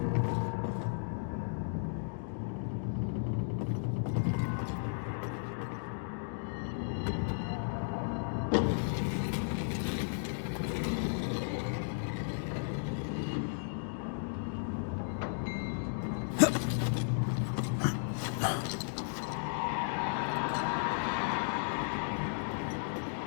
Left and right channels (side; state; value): right; silent; digital silence